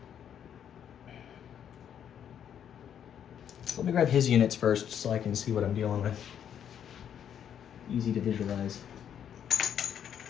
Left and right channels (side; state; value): right; quieter; 9.1 dB